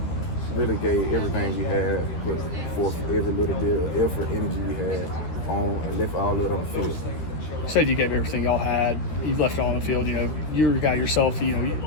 gave everything we had, put forth every little bit of effort, energy we had on, and left all of it on the field. You said you gave everything y'all had. You left it all on the field. You know, you're a guy yourself. You know, you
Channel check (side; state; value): right; late; 13 ms